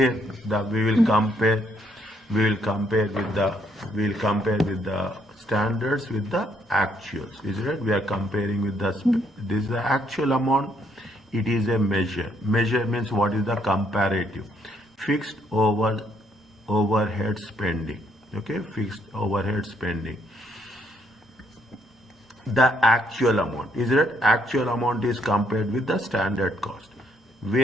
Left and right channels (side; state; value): both; normal; correlation 0.72